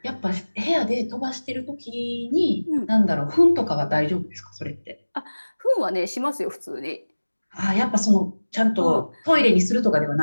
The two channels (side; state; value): both; inverted; correlation -1.00